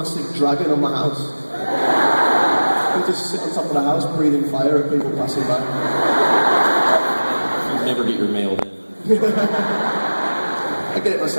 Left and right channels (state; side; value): inverted; both; correlation -1.00